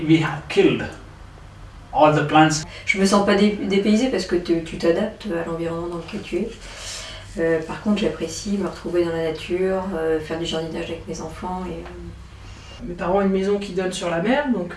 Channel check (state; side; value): identical; both; correlation 1.00